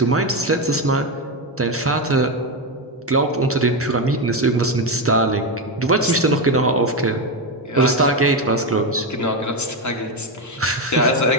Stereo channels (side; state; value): both; normal; correlation 0.11